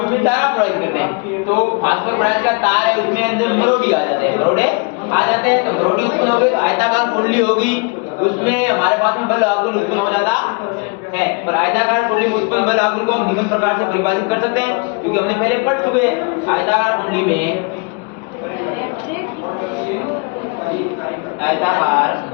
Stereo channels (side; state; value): right; quieter; 31.9 dB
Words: में धारा प्रवाहित करते हैं तो फास्फोरस ब्रांच का तार है उसमें अंदर मरोड़ी आ जाते हैं, तो मरोड़ी उत्पन्न हो गई तो आयताकार कुंडली होगी उसमें हमारे पास में बल आघूर्ण उत्पन्न हो जाता है। और आयताकार कुंडली में उत्पन्न बल आघूर्ण को हम निम्न प्रकार से परिभाषित कर सकते हैं क्योंकि हमने पहले पढ़ चुके हैं। आयताकार कुंडली में